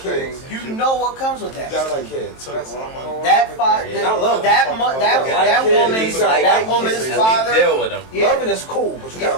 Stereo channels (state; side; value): late; right; 23 ms